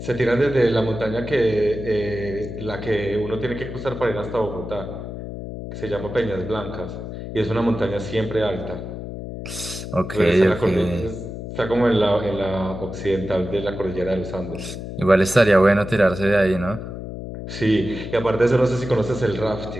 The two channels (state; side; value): noise; left; hum, 8 dB below the sound